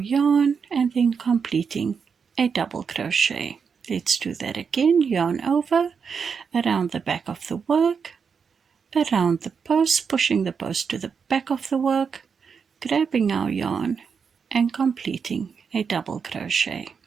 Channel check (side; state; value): left; quieter; 6.1 dB